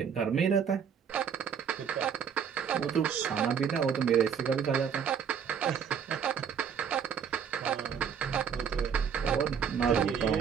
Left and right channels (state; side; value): quieter; left; 7.4 dB